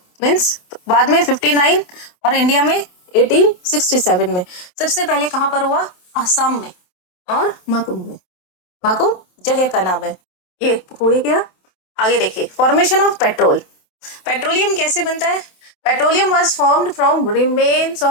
मीन्स बाद में 59 और इंडिया में 1867 में। सबसे पहले कहाँ पर हुआ? आसाम में और माकुम में। माकुम जगह का नाम है। ये हो गया। आगे देखिए, फॉर्मेशन ऑफ पेट्रोल। पेट्रोलियम कैसे बनता है? Petroleum was formed from remains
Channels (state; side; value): late; right; 27 ms